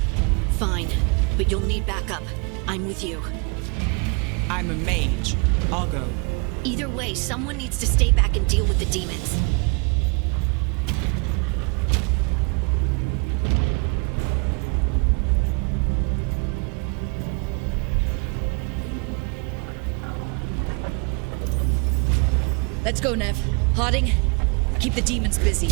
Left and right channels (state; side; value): quieter; left; 32.9 dB